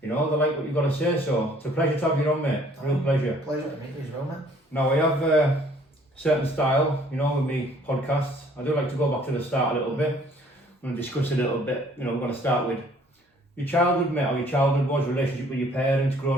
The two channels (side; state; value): both; normal; correlation 0.58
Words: You know, they like what you've got to say. So it's a pleasure to have you on, mate. Real pleasure. Pleasure to meet you as well, mate. Now, I have a certain style, you know, with me podcasts. I do like to go back to the start a little bit. I'm going to discuss a little bit. You know, we're going to start with your childhood, mate, how your childhood was, relationship with your parents,